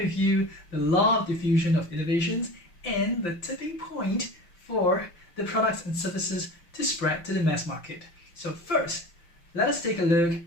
you the law of diffusion of innovations and the tipping point for the products and services to spread to the mass market. So first, let us take a look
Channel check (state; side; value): late; right; 5.8 ms